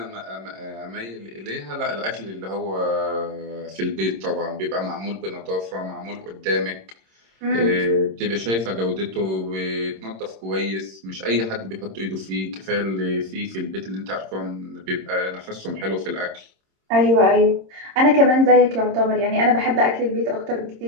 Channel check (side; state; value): left; late; 26 ms